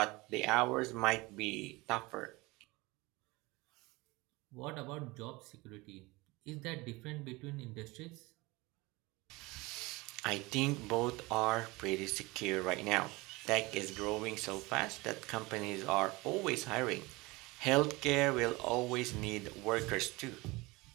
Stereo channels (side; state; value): left; quieter; 23.0 dB